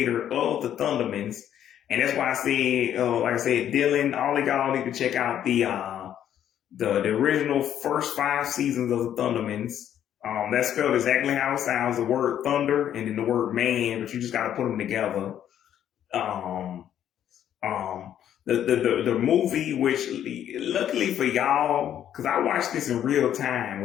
of the Thundermans. And that's why I said, Dylan, all of y'all need to check out the original first 5 seasons of the Thundermans. That's spelled exactly how it sounds, the word thunder and then the word man, but you just got to put them together. The movie, which luckily for y'all, because I watched this in real time,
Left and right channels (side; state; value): right; quieter; 10.4 dB